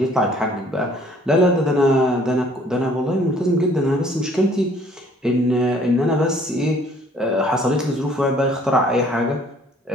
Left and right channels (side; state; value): both; normal; correlation 0.58